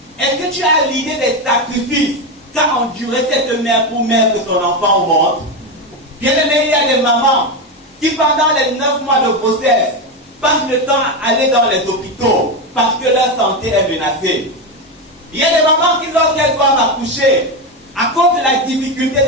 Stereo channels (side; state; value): both; normal; correlation 0.13